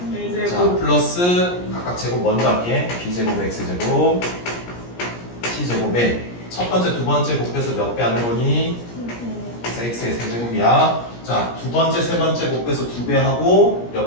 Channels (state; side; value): late; right; 17 ms